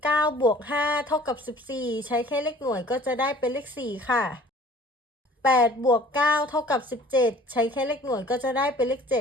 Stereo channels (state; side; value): normal; both; correlation 0.51